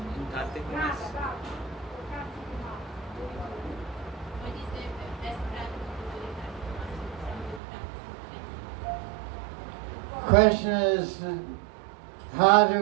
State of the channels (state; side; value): drops out; left; at 7.6 s